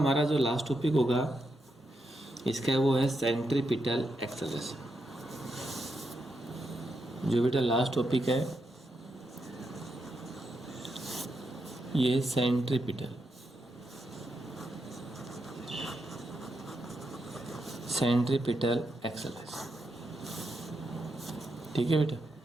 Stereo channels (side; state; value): both; normal; correlation 0.83